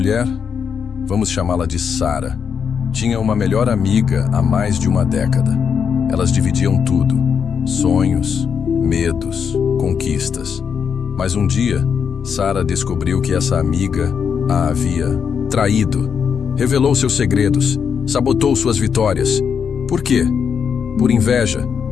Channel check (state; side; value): quieter; right; 6.9 dB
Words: vamos chamá-la de Sara, tinha uma melhor amiga há mais de uma década. Elas dividiam tudo: sonhos, medos, conquistas. Mas um dia, Sara descobriu que essa amiga a havia traído. Revelou seus segredos, sabotou suas vitórias. Por quê? Por inveja,